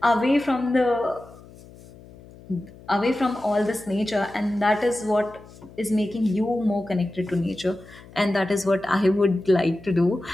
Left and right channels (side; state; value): left; noise; hum, 21 dB below the sound